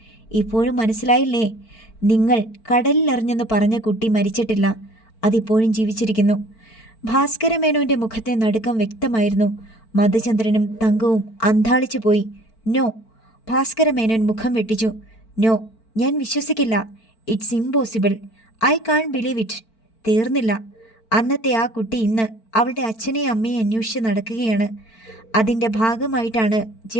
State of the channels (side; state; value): right; late; 4.5 ms